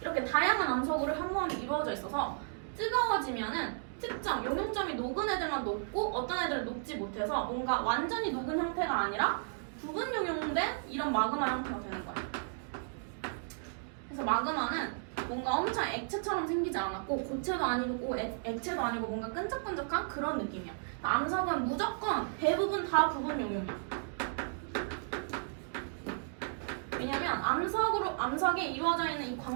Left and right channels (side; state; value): left; silent; digital silence